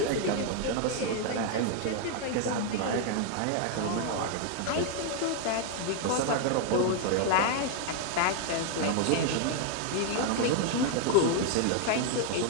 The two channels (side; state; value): both; different; correlation 0.00